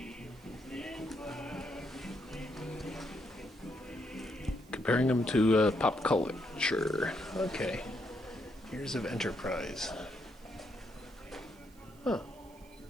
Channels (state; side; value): noise; right; hiss, 27 dB below the sound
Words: Comparing them to pop culture. Okay. Years of Enterprise. Huh.